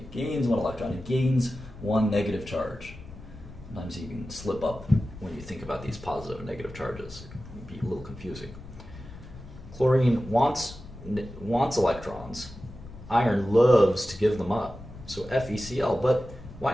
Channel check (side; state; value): left; noise; rumble, 16 dB below the sound